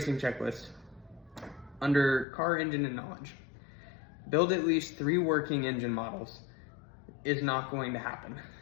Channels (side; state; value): right; drops out; at 2.2 s